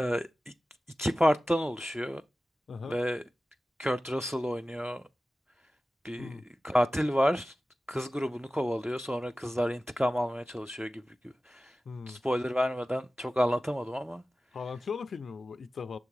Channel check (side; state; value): both; normal; correlation 0.95